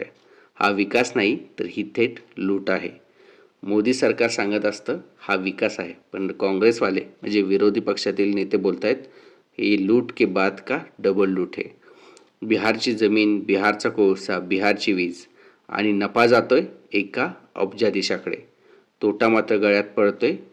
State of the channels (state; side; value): identical; both; correlation 1.00